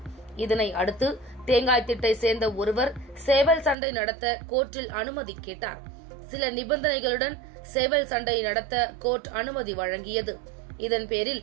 இதனை அடுத்து தேங்காய்த்திட்டை சேர்ந்த ஒருவர் சேவல் சண்டை நடத்த கோர்ட்டில் அனுமதி கேட்டார். சில நிபந்தனைகளுடன் சேவல் சண்டை நடத்த கோர்ட் அனுமதி வழங்கியது. இதன் பேரில்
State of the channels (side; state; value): left; drops out; at 3.8 s